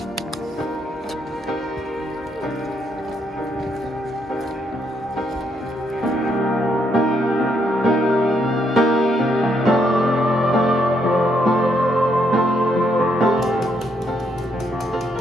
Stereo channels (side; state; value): both; normal; correlation 0.75